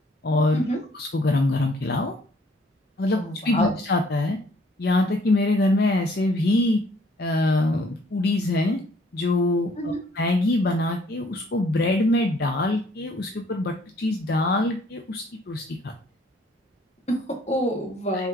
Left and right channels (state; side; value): normal; both; correlation 0.62